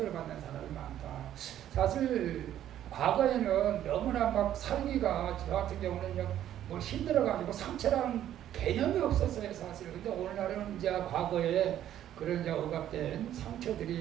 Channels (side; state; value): left; quieter; 11.5 dB